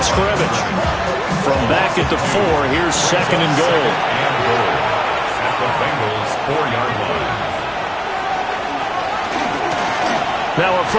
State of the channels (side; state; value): both; identical; correlation 1.00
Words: scrimmage. From back at the 4, here's 2nd and goal. And goal. At the Bengals 4-yard line. Now a